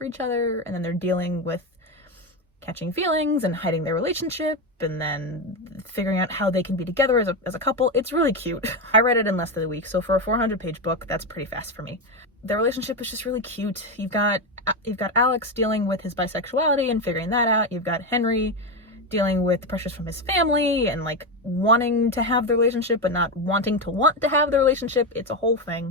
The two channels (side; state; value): both; normal; correlation 0.12